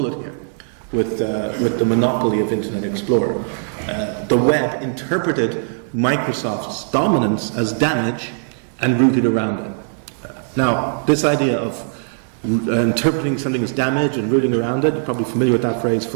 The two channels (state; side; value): silent; left; 62 dB below the other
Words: here with the monopoly of Internet Explorer. The web interpreted Microsoft's dominance as damage and rooted around it. Now, this idea of interpreting something as damage and rooting around it, you're probably familiar with that phrase